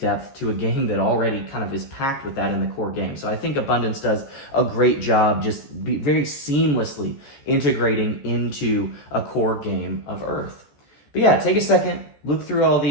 to a game that already kind of is packed with that in the core game. So I think Abundance does a great job just very seamlessly integrating into a core game of Earth. But yeah, take a second, look through all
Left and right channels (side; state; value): right; late; 14 ms